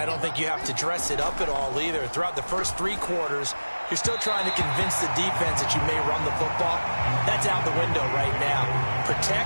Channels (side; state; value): both; inverted; correlation -1.00